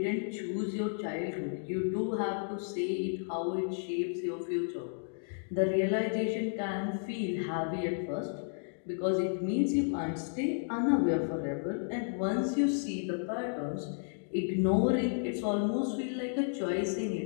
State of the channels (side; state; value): right; silent; digital silence